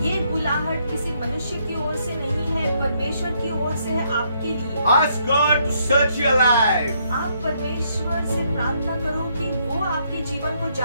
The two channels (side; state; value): both; inverted; correlation -0.72